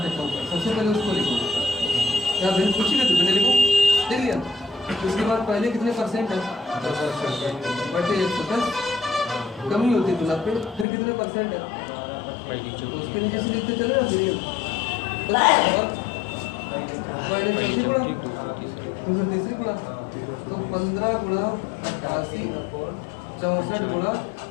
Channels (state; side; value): drops out; right; at 10.9 s